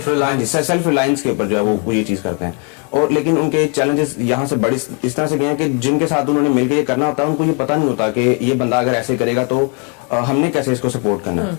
ریلائنس کے اوپر جو ہے وہ یہ چیز کرتے ہیں. اور لیکن ان کے چیلنجز یہاں سے بڑی اس طرح سے گئے ہیں کہ جن کے ساتھ انہوں نے مل کے یہ کرنا ہوتا ہے ان کو یہ پتہ نہیں ہوتا کہ یہ بندہ اگر ایسے کرے گا تو ہم نے کیسے اس کو سپورٹ کرنا ہے.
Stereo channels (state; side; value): quieter; right; 35.4 dB